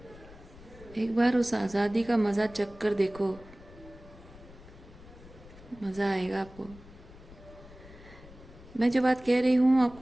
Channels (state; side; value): noise; left; rumble, 20 dB below the sound